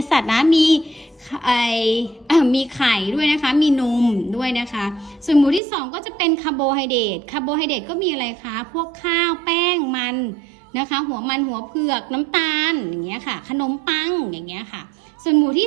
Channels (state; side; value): drops out; left; at 5.6 s